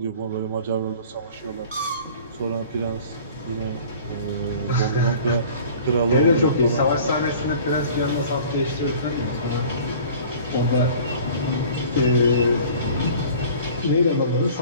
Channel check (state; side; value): inverted; both; correlation -0.46